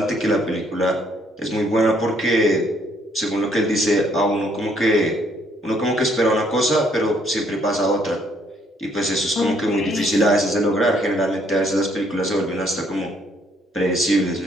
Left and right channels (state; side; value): normal; both; correlation 0.67